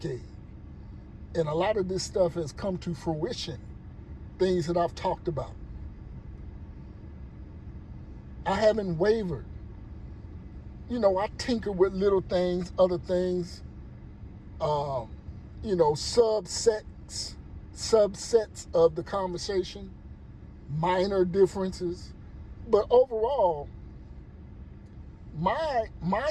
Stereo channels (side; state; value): both; identical; correlation 1.00